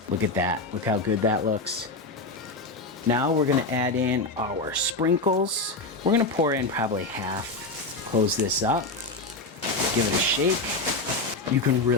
look at that, look how good that looks. Now we're gonna add in our sprinkles. We're gonna pour in probably half. Close this up, give it a shake. You can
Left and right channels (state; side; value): quieter; right; 3.2 dB